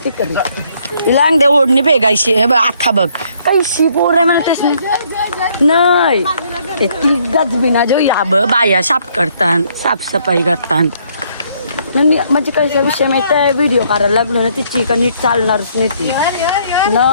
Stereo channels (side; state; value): both; inverted; correlation -0.67